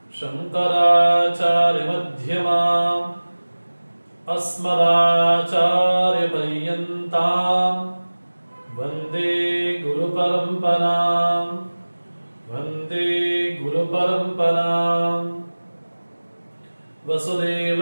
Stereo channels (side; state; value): both; inverted; correlation -1.00